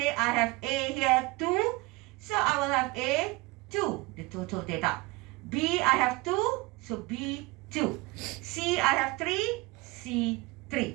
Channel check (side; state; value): left; quieter; 23.0 dB